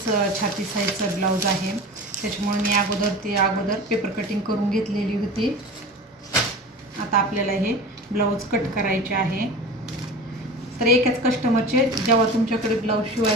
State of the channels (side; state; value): both; normal; correlation 0.34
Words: छाती साईजचा ब्लाऊज आहे. त्याच्यामुळे मी अगोदर पेपर कटिंग करून घेतलेली होती. आता आपल्याला हे ब्लाऊज कट करायचे आहे. तर एकाच कस्टमरचे जेव्हा तुमच्याकडे ब्लाऊज